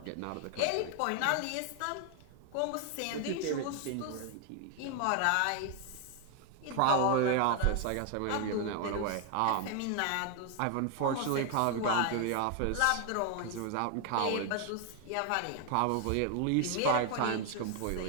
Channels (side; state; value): both; different; correlation 0.00